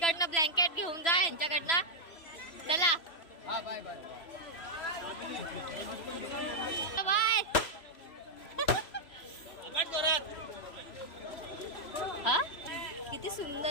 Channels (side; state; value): right; late; 3.0 ms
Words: ब्लँकेट घेऊन जा यांच्याकडनं. चला हाँ बाय बाय. बाय. हा किती